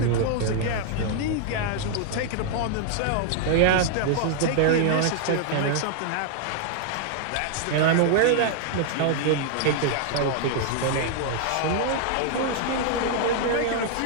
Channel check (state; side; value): different; both; correlation 0.00